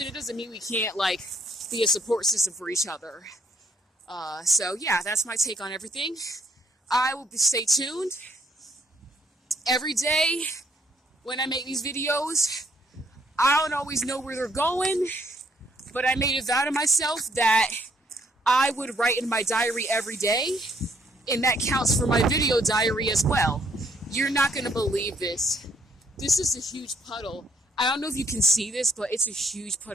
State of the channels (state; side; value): normal; both; correlation 0.67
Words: it doesn't mean we can't like be a support system for each other. So yeah, that's my take on everything. I will stay tuned every day when I make these videos. I don't always know where they're going, but I made a vow to myself that I would write in my diary every day, and that counts for my video diary as well. You're not going to believe this. This is a huge puddle. I don't know if you can see this, but it's a huge